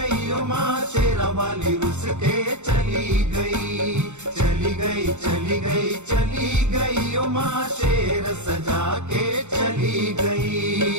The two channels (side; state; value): left; late; 0.83 ms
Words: ओ माँ शेरों वाली रुस के चली गई। चली गई चली गई चली गई ओ माँ शेर सजा के चली